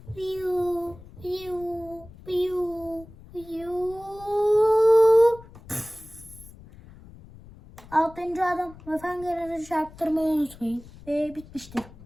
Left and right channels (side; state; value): left; noise; rumble, 20 dB below the sound